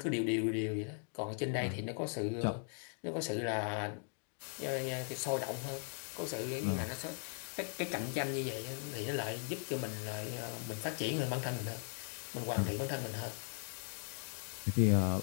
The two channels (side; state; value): right; silent; 52 dB below the other